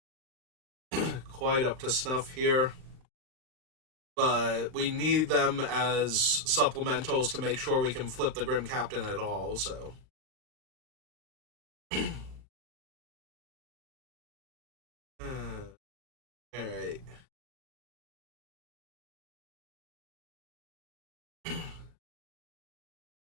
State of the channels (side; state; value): left; late; 39 ms